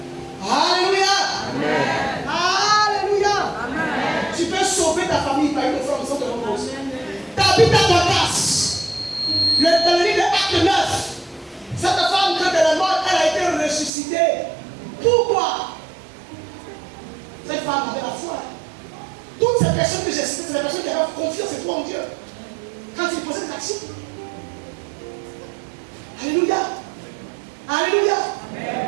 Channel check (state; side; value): drops out; left; at 13.9 s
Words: Alléluia. Alléluia. Tu peux sauver ta famille par une offrande sans te reposer. Tabitha Dorcas, dans le livre de Acte 9, cette femme, quand elle est morte, elle a été ressuscitée. Pourquoi? Cette femme avait la foi. Toutes ces personnes que j'ai citées, c'est des personnes qui avaient confiance et foi en Dieu. Quand ils posaient des actions. Alléluia. Alléluia.